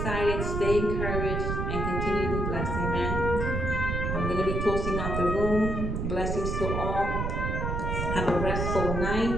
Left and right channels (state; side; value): noise; right; rumble, 1 dB below the sound